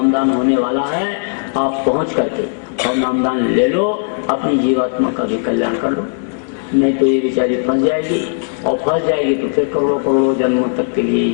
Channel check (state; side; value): silent; right; 61 dB below the other